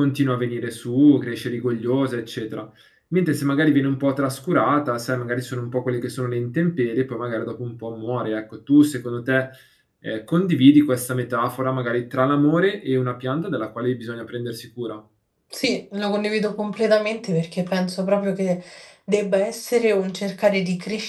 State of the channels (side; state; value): both; identical; correlation 1.00